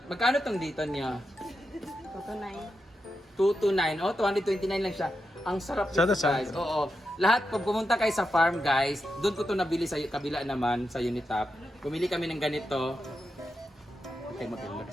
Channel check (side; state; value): both; normal; correlation 0.87